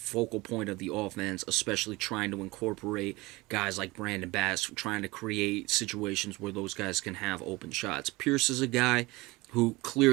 point of the offense, especially trying to incorporate guys like Brandon Bass, trying to create situations where those guys can have open shots. Pierce is a guy who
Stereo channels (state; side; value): quieter; left; 22.1 dB